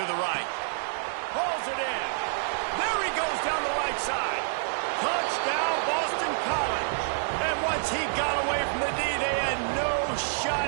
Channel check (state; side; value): silent; left; digital silence